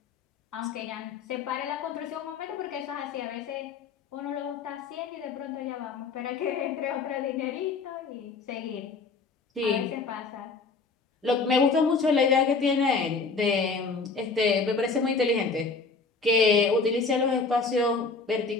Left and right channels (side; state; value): right; quieter; 4.4 dB